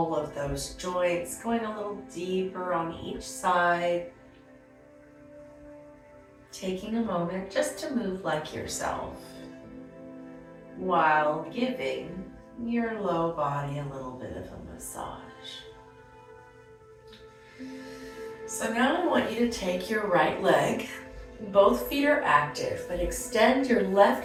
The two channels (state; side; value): identical; both; correlation 1.00